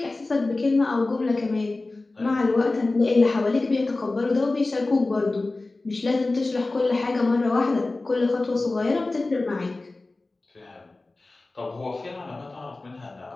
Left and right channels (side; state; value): right; quieter; 3.2 dB